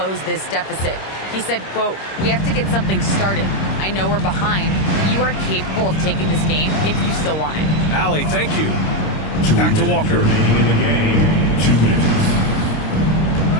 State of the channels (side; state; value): right; late; 26 ms